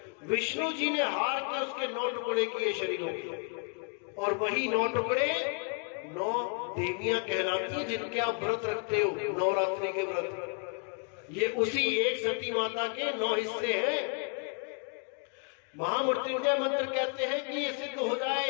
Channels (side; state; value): right; quieter; 37.7 dB